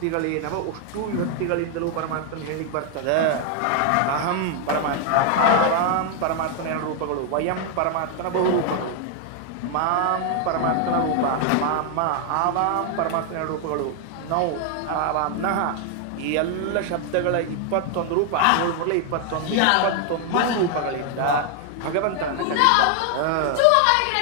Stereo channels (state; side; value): different; both; correlation 0.00